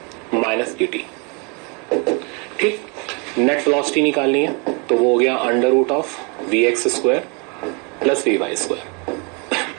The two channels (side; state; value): left; quieter; 33.3 dB